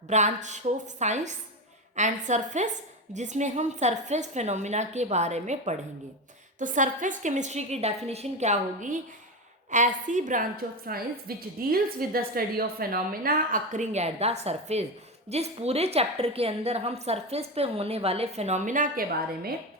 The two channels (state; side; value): normal; both; correlation 0.17